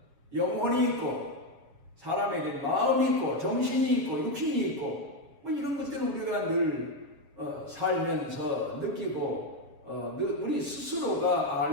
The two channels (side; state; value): left; late; 7.2 ms